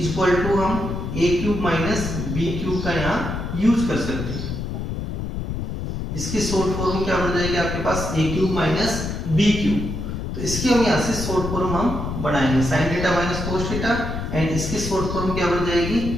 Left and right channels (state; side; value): noise; left; rumble, 4 dB below the sound